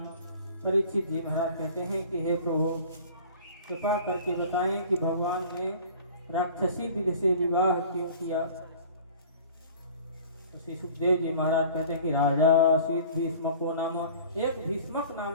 परीक्षित जी महाराज कहते हैं कि हे प्रभु कृपा करके बताएं कि भगवान ने राक्षसी विधि से विवाह क्यों किया। श्री सुखदेव जी महाराज कहते हैं कि राजा शीत भीष्मको नाम, एक भीष्मक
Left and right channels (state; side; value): inverted; both; correlation -0.45